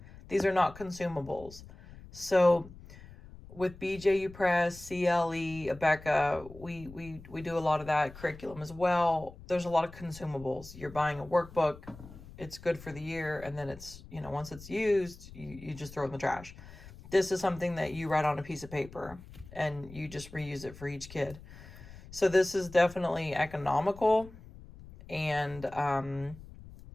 These are not consumables. So with BJU Press, CLE, Abeka, we do a lot of that curriculum as well. There's a lot of consumables. You're buying a workbook. It's good for the year. And then it's, once it's used, you just throw it in the trash. This is something that you write on a piece of paper and you just reuse it for each kid. So this is definitely economical, and I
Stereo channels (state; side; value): noise; left; rumble, 17 dB below the sound